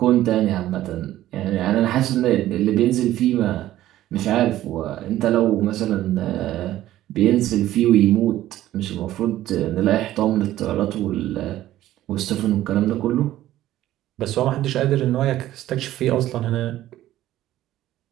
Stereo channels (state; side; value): quieter; left; 14.0 dB